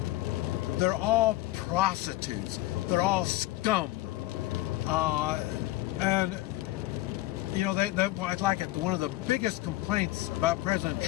They're all prostitutes. They're all scum. And I'd like it. One of the biggest complaints about President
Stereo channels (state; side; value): quieter; right; 17.5 dB